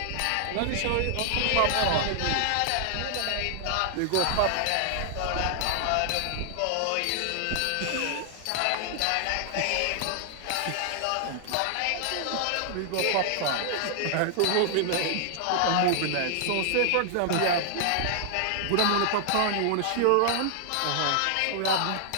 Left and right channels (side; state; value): both; different; correlation 0.00